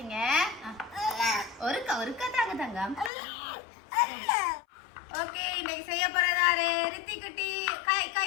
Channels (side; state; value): right; drops out; at 3.1 s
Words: ஒருக்கா தாங்க தங்கம். ஓகே இன்னைக்கு செய்ய போறதாரு ரித்தி குட்டி. கை